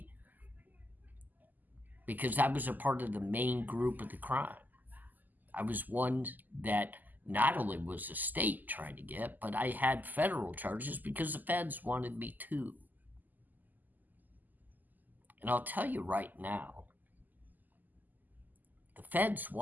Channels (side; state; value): left; late; 0.084 ms